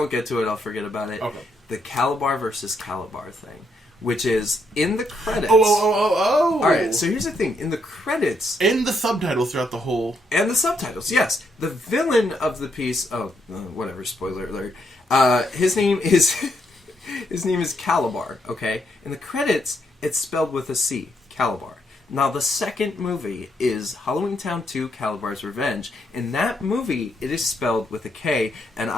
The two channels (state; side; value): normal; both; correlation 0.76